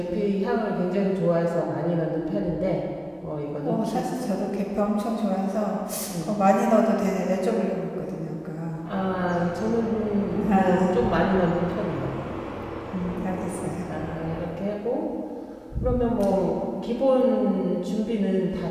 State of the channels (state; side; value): identical; both; correlation 1.00